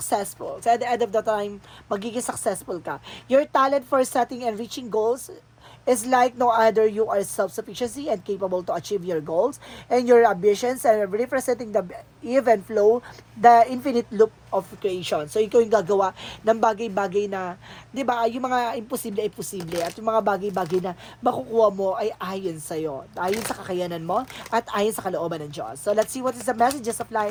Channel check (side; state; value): both; identical; correlation 1.00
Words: So, at the end of the time, magiging successful ka. Your talent for setting and reaching goals is like no other. You are self-sufficiency and capable to achieve your goals and your ambitions and representing the even flow, the infinite loop of creation. So, ikaw yung gagawa ng bagay-bagay na, di ba, yung mga imposible ay posible at yung mga bagay-bagay na makukuha mo ay ayon sa'yo, ayon sa kakayanan mo at ayon sa kalooban ng Diyos. So, let's see what is the messages of